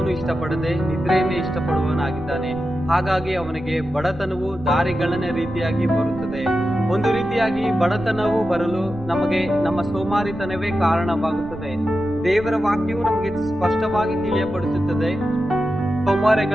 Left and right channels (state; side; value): noise; right; rumble, 17 dB below the sound